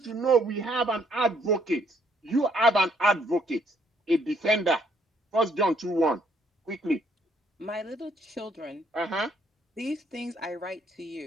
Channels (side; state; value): both; normal; correlation 0.68